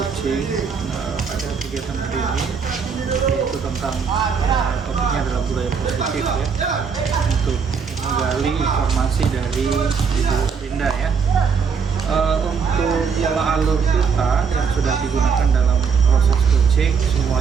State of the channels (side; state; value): left; quieter; 6.0 dB